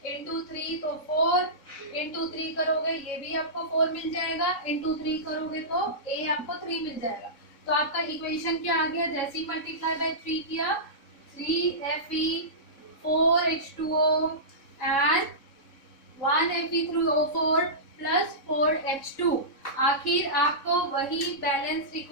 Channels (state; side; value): late; right; 3.7 ms